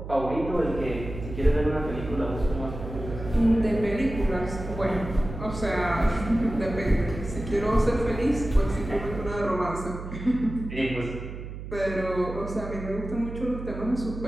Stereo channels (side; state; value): right; noise; hum, 9 dB below the sound